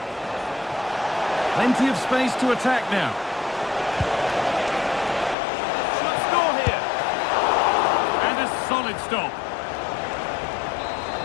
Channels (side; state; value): right; drops out; at 5.4 s